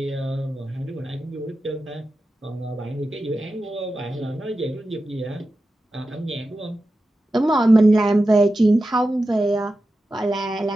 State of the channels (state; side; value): normal; both; correlation 0.92